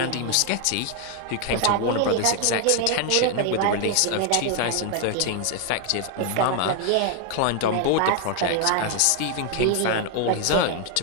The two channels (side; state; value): both; different; correlation 0.00